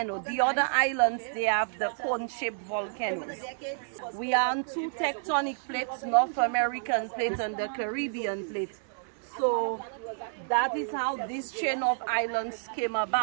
The other islands, they have the cone-shaped volcanoes. We are on 2 tectonic plates, North American plate and the Caribbean plate. So that is how this chain of islands came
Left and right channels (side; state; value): left; silent; 58 dB below the other